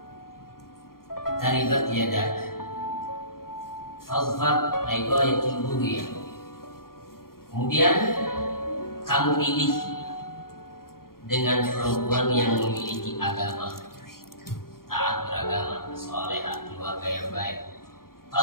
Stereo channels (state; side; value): late; right; 0.92 ms